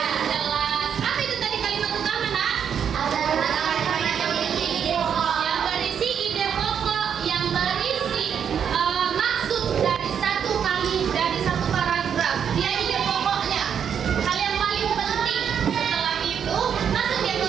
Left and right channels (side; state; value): left; quieter; 7.9 dB